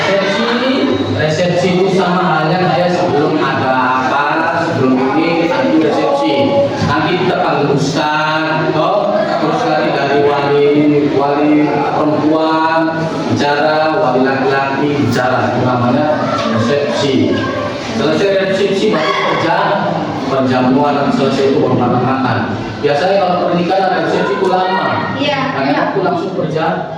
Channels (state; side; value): identical; both; correlation 1.00